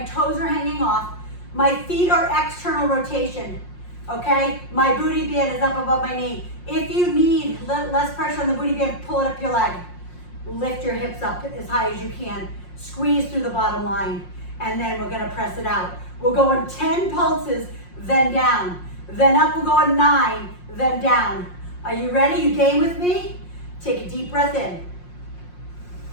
are hanging off. My feet are external rotation, okay? My booty band is up above my knee. If you need less pressure on the booty band, pull it up your leg. Lift your hips up as high as you can. Squeeze through the bottom line, and then we're gonna press it out. We'll go on 10 pulses, then down. Then up, we'll go on 9, then down. Are you ready? You game with me? Take a deep breath in.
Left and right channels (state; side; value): late; right; 5.6 ms